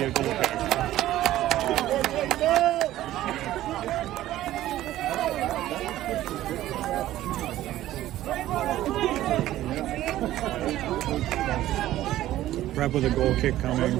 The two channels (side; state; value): left; quieter; 14.2 dB